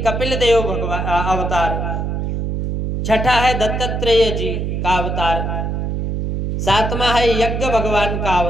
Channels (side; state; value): right; noise; hum, 2 dB below the sound